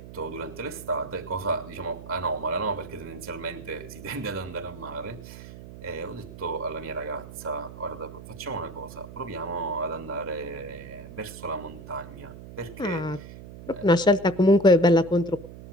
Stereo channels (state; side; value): noise; right; hum, 14 dB below the sound